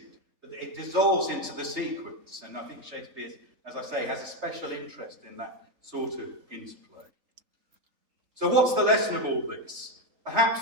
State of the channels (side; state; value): left; late; 3.3 ms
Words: but it dissolves into the sequence. And I think Shakespeare, as I say, has a special interest in that sort of interplay. So what's the lesson of all this?